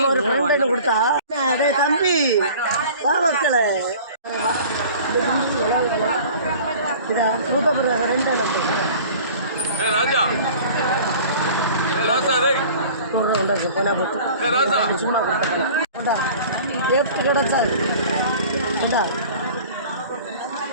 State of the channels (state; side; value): inverted; both; correlation -0.44